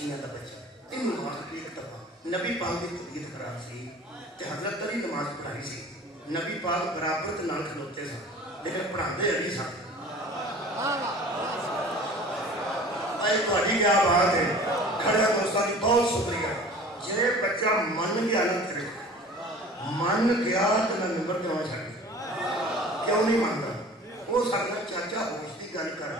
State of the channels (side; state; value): both; normal; correlation 0.44